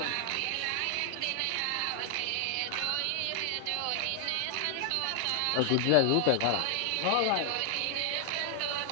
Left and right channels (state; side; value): different; both; correlation 0.00